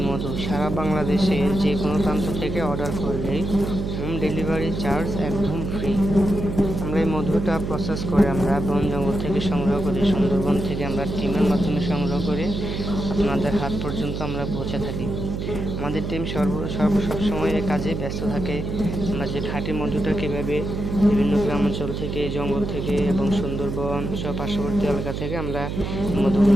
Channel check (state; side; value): noise; right; hum, 4 dB below the sound